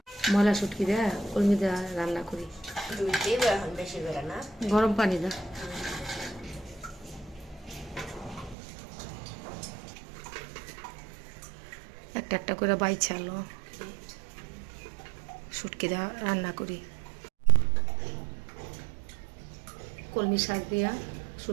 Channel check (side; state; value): left; drops out; at 8.6 s